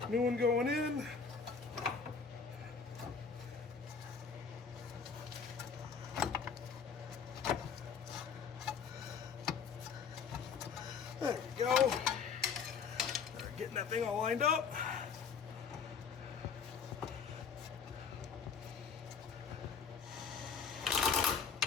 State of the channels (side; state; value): right; quieter; 5.9 dB